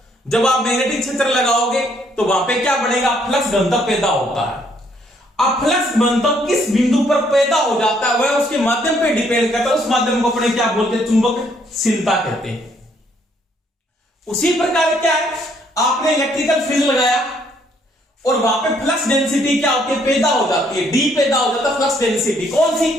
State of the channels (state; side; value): normal; both; correlation 0.68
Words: जब आप मैग्नेटिक क्षेत्र लगाओगे तो वहां पे क्या बनेगा? फ्लक्स घनत्व पैदा होता है। अब फ्लक्स घनत्व किस बिंदु पर पैदा हो जाता है, वह उसके माध्यम पे डिपेंड करता है। उस माध्यम को अपने क्या बोलते हैं? चुंबकशीलता कहते हैं। उसी प्रकार क्या है, आपने इलेक्ट्रिकल फील्ड लगाया, और वहां पे फ्लक्स डेंसिटी क्या होती है, पैदा हो जाती है, डी पैदा हो जाता है फ्लक्स डेंसिटी। कौन सी,